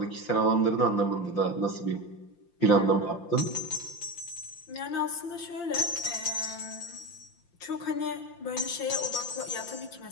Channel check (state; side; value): late; right; 5.8 ms